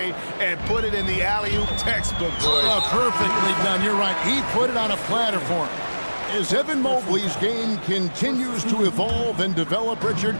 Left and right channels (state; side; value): inverted; both; correlation -1.00